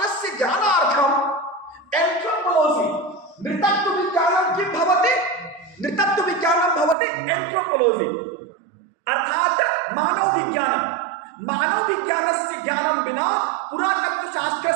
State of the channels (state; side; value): drops out; left; at 7.0 s